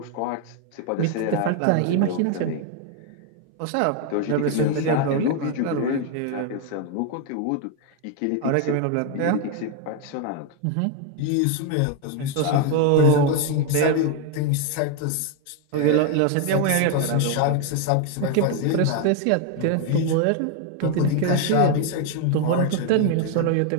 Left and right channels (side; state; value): both; different; correlation 0.01